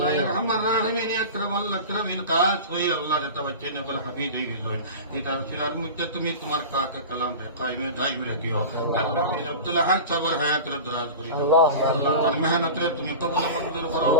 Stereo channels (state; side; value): inverted; both; correlation -0.32